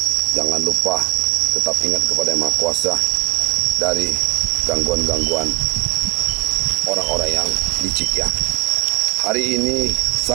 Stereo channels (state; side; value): quieter; left; 24.9 dB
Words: jangan lupa tetap ingat kepada Yang Maha Kuasa dari gangguan-gangguan orang-orang yang licik ya. Hari ini